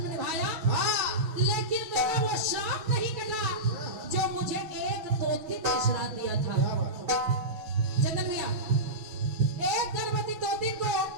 निभाया, लेकिन मेरा वो श्राप नहीं कटा जो मुझे एक तोती ने श्राप दिया था। चंदन भैया, एक गर्भवती तोती को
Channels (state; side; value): late; left; 6.2 ms